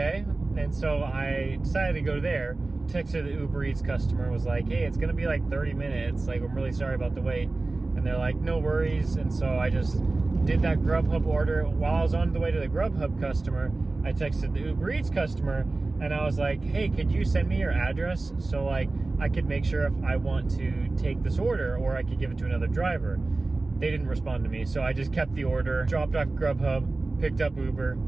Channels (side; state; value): left; quieter; 3.3 dB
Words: And so I decided to go there. Texted the Uber Eats customer, was like, hey, it's gonna be like 30 minutes. Like, I'm really sorry about the wait. And they're like, no worries. And so I just did that Grubhub order. While I was on the way to the Grubhub customer, I texted the Uber Eats customer, and I was like, hey, could you send me your address so like I could make sure if I want to take this order, or I could give it to another driver. They didn't respond to me, so I just kept the order, dropped off Grubhub, picked up Uber.